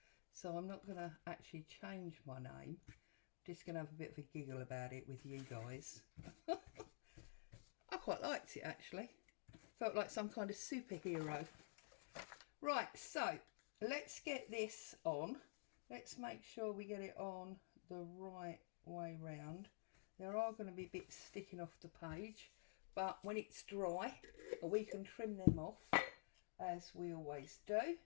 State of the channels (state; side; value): silent; right; digital silence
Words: So I'm not going to actually change my name. I'm just going to have a bit of a giggle about it with you guys. I quite liked it actually. Felt like some kind of superhero. Right, so let's get this on. Let's make sure we get it on the right way round. There are going to be bits sticking off the page, but when it's dry, we can trim them off as we always do.